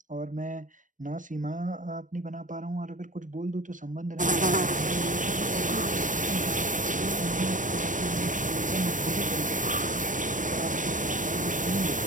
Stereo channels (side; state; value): left; late; 0.37 ms